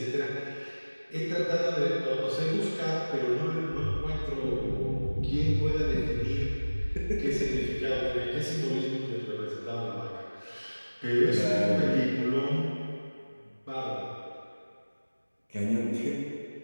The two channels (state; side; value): inverted; both; correlation -1.00